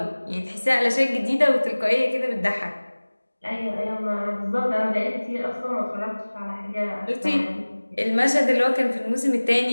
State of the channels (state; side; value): inverted; both; correlation -1.00